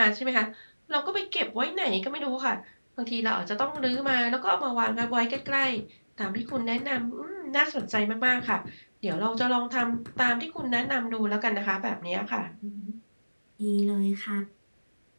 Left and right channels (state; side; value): inverted; both; correlation -1.00